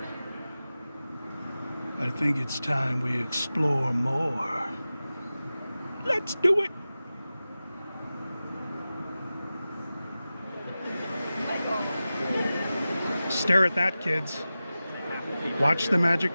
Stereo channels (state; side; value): inverted; both; correlation -0.95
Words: I think it's time we explore more. Let's do it! Stare at that, kids. Watch the